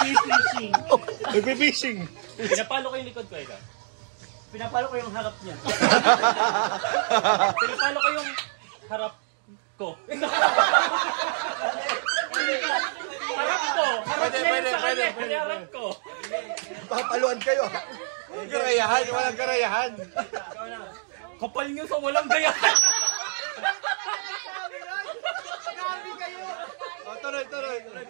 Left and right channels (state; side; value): silent; left; digital silence